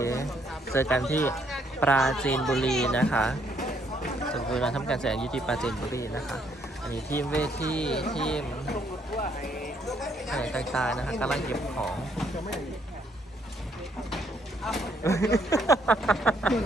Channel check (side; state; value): both; normal; correlation 0.70